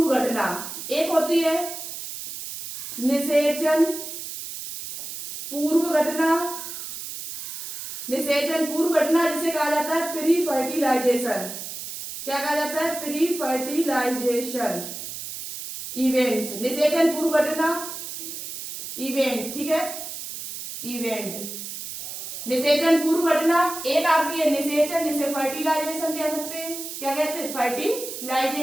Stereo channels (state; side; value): noise; right; hiss, 8 dB below the sound